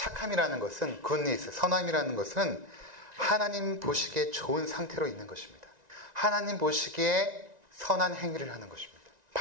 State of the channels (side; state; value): left; late; 1.9 ms